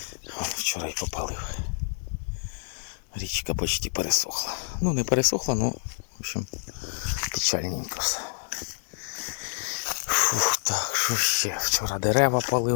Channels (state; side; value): silent; right; 60 dB below the other